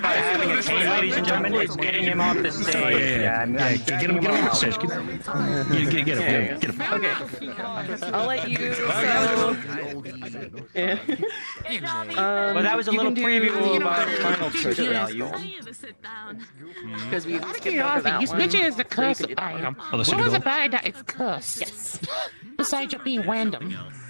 having a chain ladies and gentlemen, it's getting him off the stage. Get him off the stage. Get him. Okay. I'll let you. Well, that was a little preview of our final picture value. Because we skipped over that This one. picture is the So you curse could do that. item. Oh, What was about that? It's cursed. Yes. Besides it being random.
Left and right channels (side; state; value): both; inverted; correlation -1.00